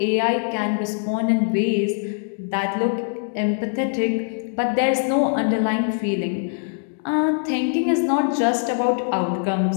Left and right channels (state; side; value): silent; right; digital silence